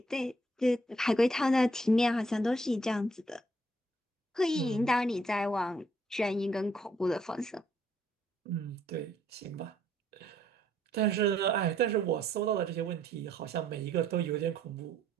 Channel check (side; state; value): both; normal; correlation 0.68